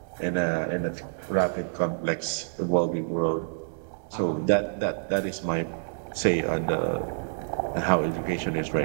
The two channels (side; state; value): left; silent; digital silence